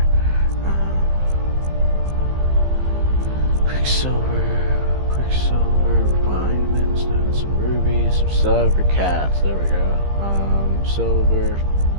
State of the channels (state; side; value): late; left; 15 ms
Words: Quicksilver, refined moonstone, some rubies, some silver cats. There we go. Silver,